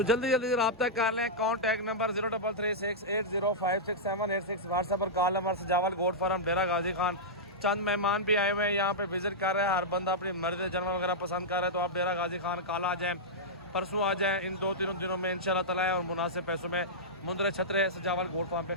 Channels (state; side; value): normal; both; correlation -0.11